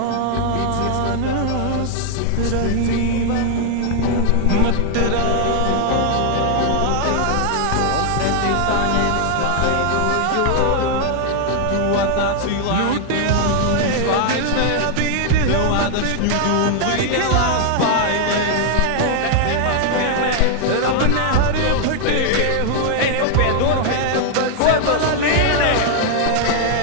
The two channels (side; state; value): both; different; correlation 0.00